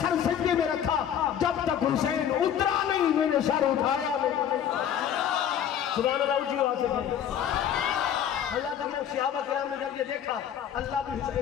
سر سجدے میں رکھا، جب تک حسین اترا نہیں میں نے سر اٹھایا نہیں. سبحان اللہ. اونچی آواز سے اللہ تعالیٰ صحابہ کرام نے جب یہ دیکھا اللہ بھی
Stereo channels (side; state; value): right; quieter; 9.4 dB